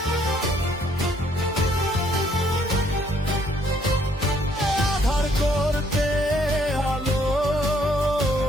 আধার করতে আলো,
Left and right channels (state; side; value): normal; both; correlation 0.66